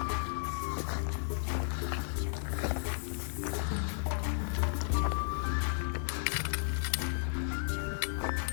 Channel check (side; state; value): right; silent; digital silence